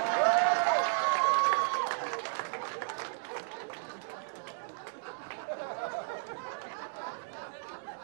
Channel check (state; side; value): silent; left; digital silence